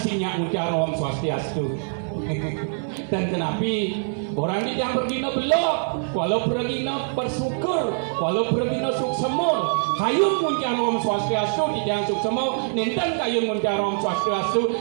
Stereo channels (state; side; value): silent; left; 61 dB below the other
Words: ucaran Om Swastiastu. Dan kenapi orang ini yang bergino belok walau bergino bersyukur walau bergino suksemur kayun muncar Om Swastiastu di jangan suksemur ninten kayun muncar Om Swastiastu